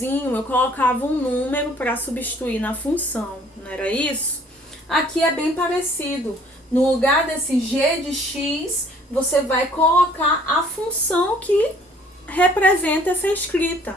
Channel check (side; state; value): both; normal; correlation 0.57